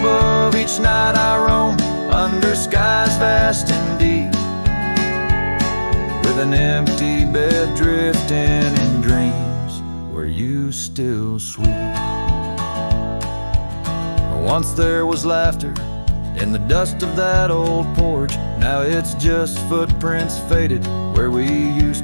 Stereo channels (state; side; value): inverted; both; correlation -1.00